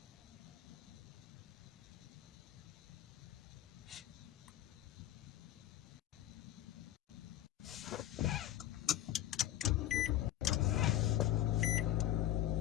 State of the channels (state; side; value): quieter; right; 13.1 dB